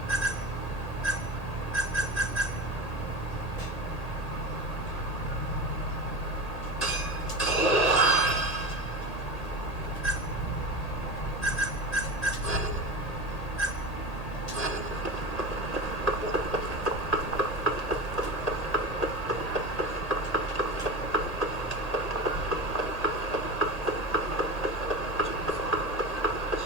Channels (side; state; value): right; late; 1.8 ms